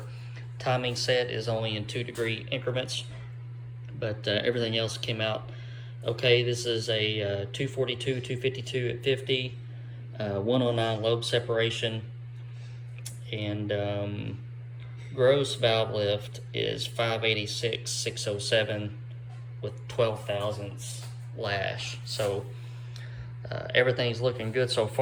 timing set is only in 2-degree increments, but everything else came out okay. This is a 242, 252 at 50, 109 lobe separation, and gross valve lift is 586, 607 with 12 thousandths lash. So everything's looking good so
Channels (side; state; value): both; identical; correlation 1.00